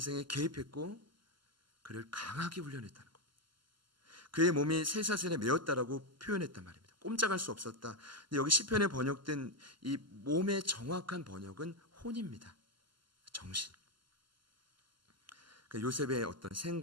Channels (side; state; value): left; late; 0.73 ms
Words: 개입했고 그를 강하게 훈련했다는 겁니다. 그의 몸이 쇠사슬에 매였다라고 표현했단 말입니다. 꼼짝할 수 없었다. 근데 여기 시편에 번역된 이 몸의 정확한 번역은 혼입니다. 정신. 그러니까 요셉의 어떤